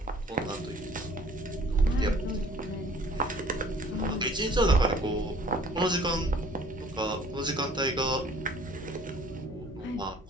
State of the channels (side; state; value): both; normal; correlation 0.54